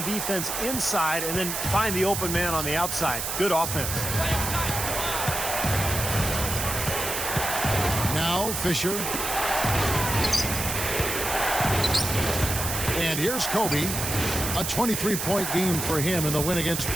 defense inside and then find the open man on the outside. Good offense. Now Fisher. And here's Kobe. A 23-point game for him in the win against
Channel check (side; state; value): right; noise; hiss, 3 dB below the sound